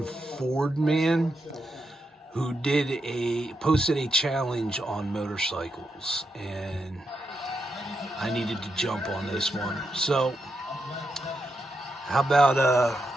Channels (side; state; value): both; normal; correlation 0.84